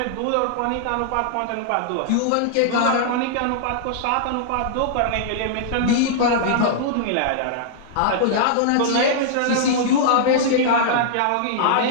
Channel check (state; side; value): different; both; correlation -0.01